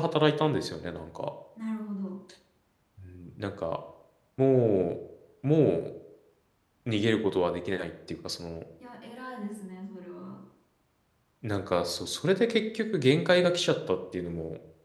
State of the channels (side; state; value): both; identical; correlation 1.00